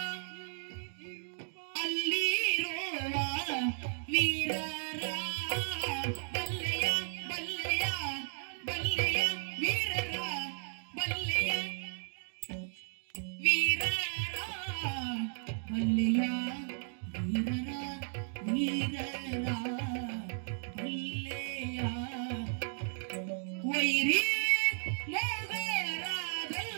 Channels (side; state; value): left; silent; digital silence